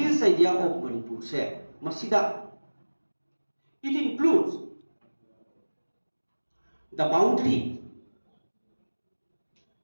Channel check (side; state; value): both; inverted; correlation -1.00